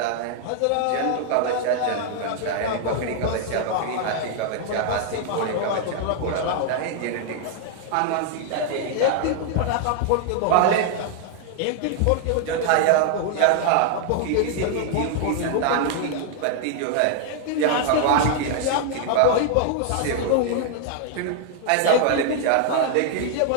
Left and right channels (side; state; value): both; different; correlation 0.00